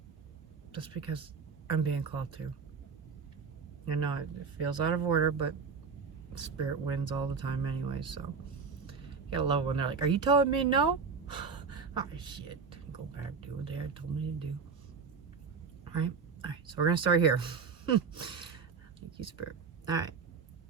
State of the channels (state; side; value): quieter; left; 5.5 dB